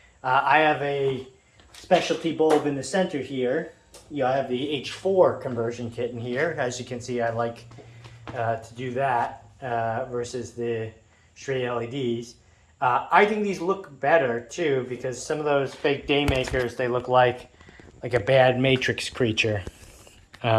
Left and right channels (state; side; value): identical; both; correlation 1.00